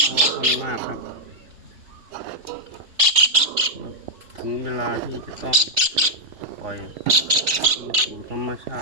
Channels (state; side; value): late; left; 3.0 ms